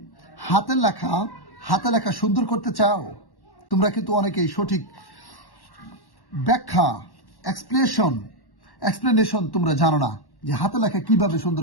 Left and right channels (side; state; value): right; late; 1.1 ms